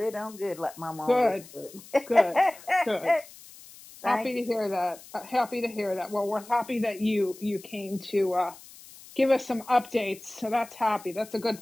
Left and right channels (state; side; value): noise; left; hiss, 20 dB below the sound